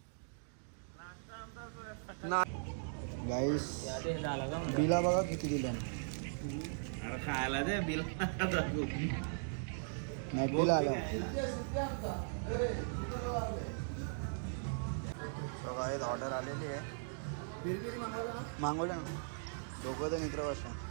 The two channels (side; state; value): left; silent; digital silence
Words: गाईस बिला बघा किती दिल्या. अरे खायला दे बिल नाही बिल आलं. गाईज ऑर्डर आलेली आहे. मागवलं ना दोघं तर मित्र बसा.